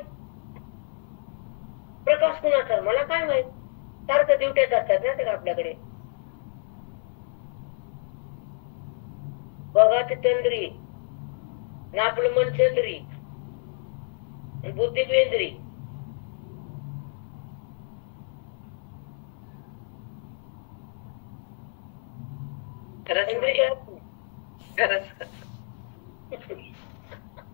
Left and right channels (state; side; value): silent; right; 59 dB below the other